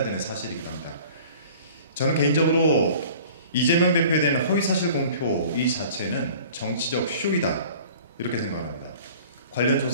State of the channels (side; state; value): both; inverted; correlation -0.46